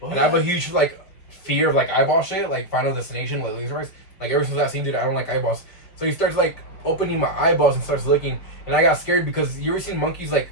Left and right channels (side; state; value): right; late; 5.1 ms